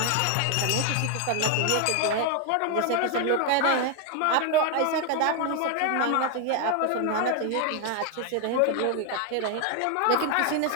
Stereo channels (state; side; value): different; both; correlation 0.01